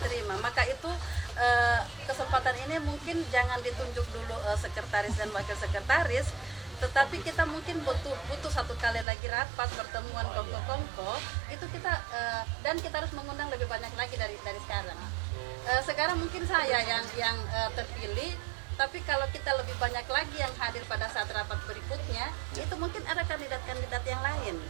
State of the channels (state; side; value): drops out; left; at 9.1 s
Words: terima. Maka itu kesempatan ini mungkin jangan ditunjuk dulu sekretaris dan wakil sekretaris, tetapi kita mungkin butuh satu kali lagi rapat pertemuan kongko itu kita dan kita harus mengundang lebih banyak lagi dari sekarang. Sekarang mungkin saya yang terpilih, tapi kalau kita lebih banyak lagi yang hadir pada saat rapat berikutnya, itu mungkin ada kandidat-kandidat yang lain.